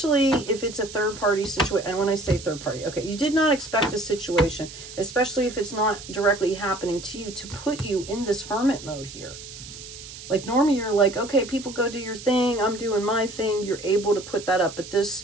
if it's a third party situation. And when I say third party, okay, you did not expect this situation, especially if it's not directly happening to you, to put you in this hermit mode here. Like normally you're like, okay, people go do your thing, I'm doing my thing. You're able to put that up. But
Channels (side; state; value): right; noise; hiss, 14 dB below the sound